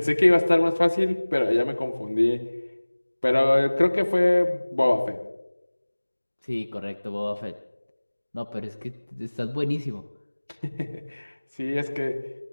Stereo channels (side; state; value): both; inverted; correlation -1.00